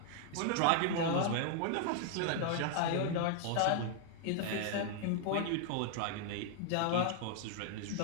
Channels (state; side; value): different; both; correlation 0.00